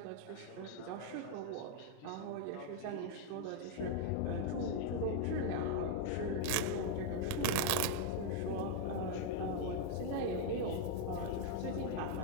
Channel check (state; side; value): different; both; correlation 0.00